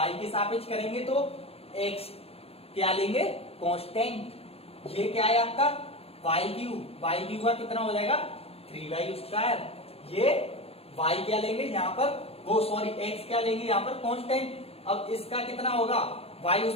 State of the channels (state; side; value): late; right; 0.29 ms